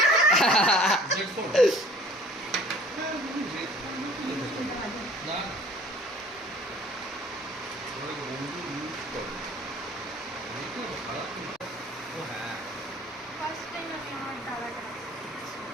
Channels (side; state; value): both; normal; correlation 0.49